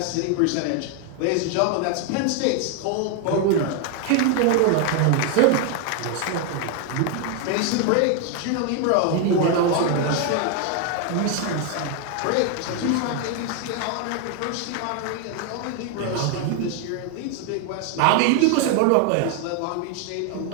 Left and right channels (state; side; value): different; both; correlation 0.01